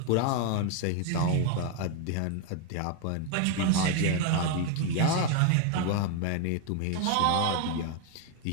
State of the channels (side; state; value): both; different; correlation 0.01